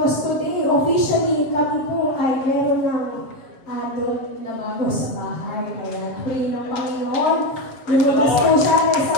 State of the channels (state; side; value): late; right; 7.3 ms